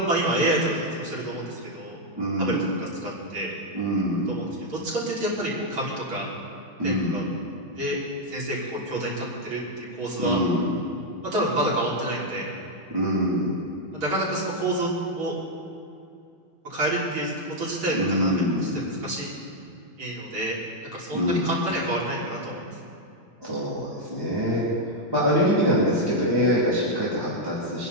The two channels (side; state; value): both; normal; correlation -0.01